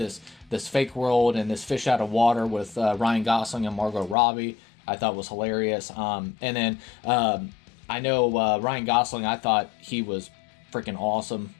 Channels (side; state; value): right; drops out; at 4.2 s